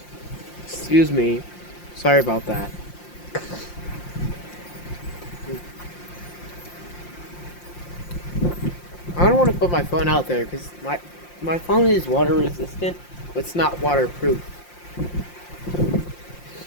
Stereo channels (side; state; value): right; late; 5.7 ms